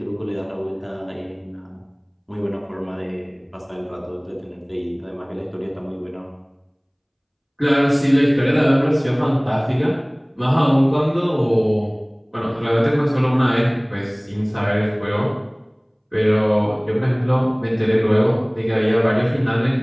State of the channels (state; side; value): identical; both; correlation 1.00